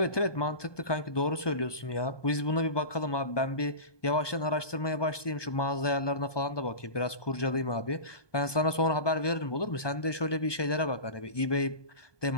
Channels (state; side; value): late; right; 1.2 ms